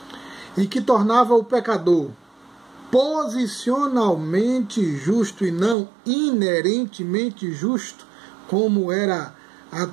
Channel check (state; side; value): drops out; left; at 5.8 s